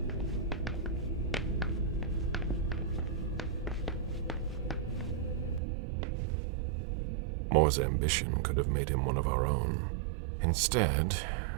Moore's ambition could have made him one of our own. Instead,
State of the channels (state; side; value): drops out; left; at 5.6 s